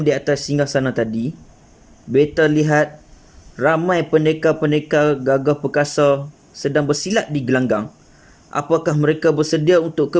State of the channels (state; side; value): identical; both; correlation 1.00